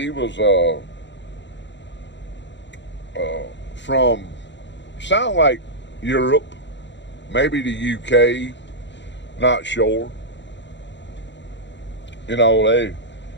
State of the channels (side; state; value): right; late; 0.52 ms